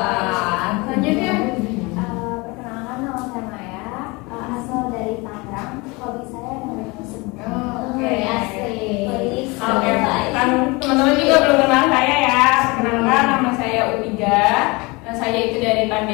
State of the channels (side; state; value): right; quieter; 25.7 dB